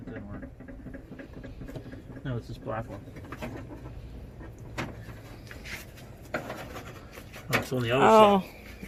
didn't work. No, it's this black one. Oh, it's on the other side.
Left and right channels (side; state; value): both; identical; correlation 1.00